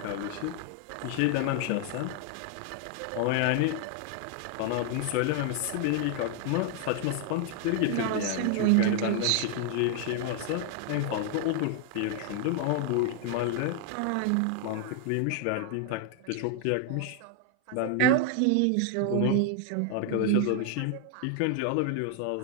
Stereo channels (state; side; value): different; both; correlation 0.00